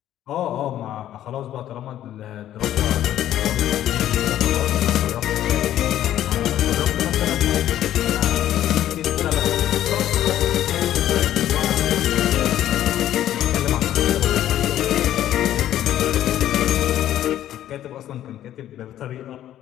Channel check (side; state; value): right; quieter; 12.1 dB